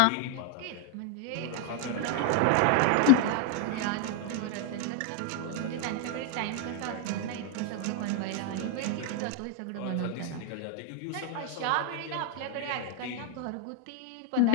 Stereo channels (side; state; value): both; different; correlation 0.00